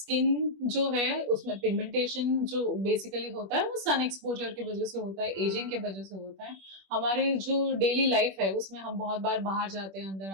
जो है उसमें पिगमेंटेशन जो बेसिकली होता है वो सन एक्सपोजर की वजह से होता है, एजिंग के वजह से होता है। हमारे जो डेली लाइफ है उसमें हम बहुत बार बाहर जाते हैं, अंदर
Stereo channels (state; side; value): late; left; 21 ms